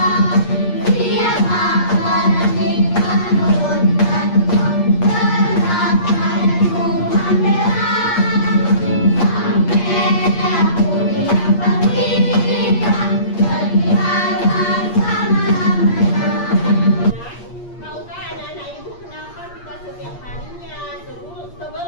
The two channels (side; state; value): right; late; 8.5 ms